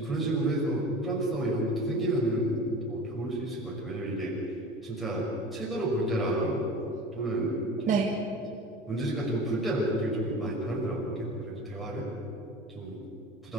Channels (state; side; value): normal; both; correlation 0.37